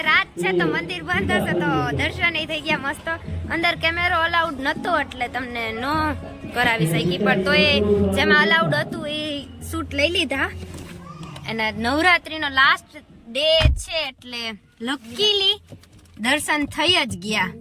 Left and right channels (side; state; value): both; identical; correlation 1.00